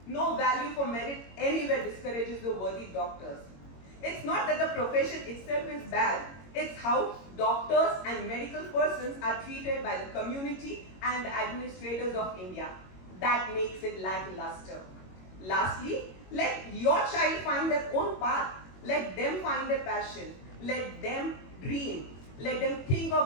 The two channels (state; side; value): late; right; 21 ms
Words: No value for merit anywhere discourages the worthy doctors. It's not that the profession itself is bad, it's how doctors and medical persons are treated by the community and the administrators of India. That makes it lackluster. Lastly, let your child find their own path. Let them find their passion. Let them dream. Let them think of